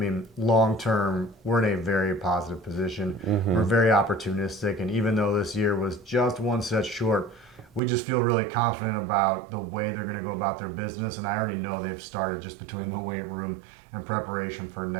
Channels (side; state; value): left; drops out; at 7.8 s